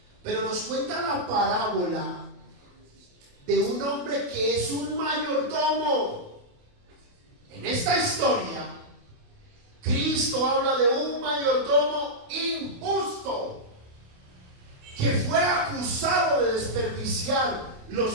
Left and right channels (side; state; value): left; late; 28 ms